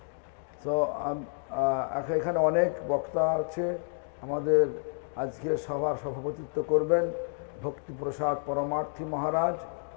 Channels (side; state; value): right; silent; 58 dB below the other